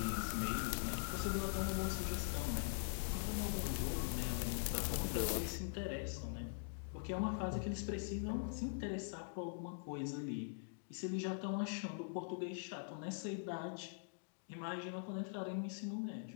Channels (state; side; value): silent; right; digital silence